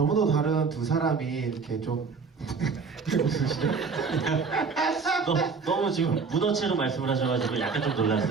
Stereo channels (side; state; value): left; quieter; 5.0 dB